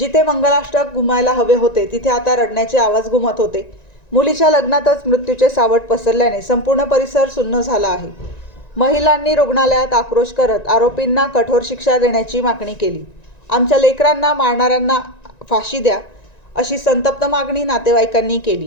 मंगलाष्टक घुमायला हवे होते तिथे आता रडण्याचे आवाज घुमत होते. मुलीच्या लग्नातच मृत्यूचे सावट पसरल्याने संपूर्ण परिसर सुन्न झाला आहे. महिलांनी रुग्णालयात आक्रोश करत आरोपींना कठोर शिक्षा देण्याची मागणी केली. आमच्या लेकरांना मारणाऱ्यांना फाशी द्या, अशी संतप्त मागणी नातेवाईकांनी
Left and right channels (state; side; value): late; right; 1.9 ms